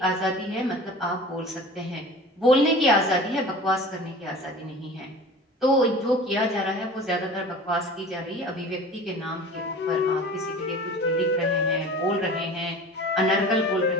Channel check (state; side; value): normal; both; correlation 0.40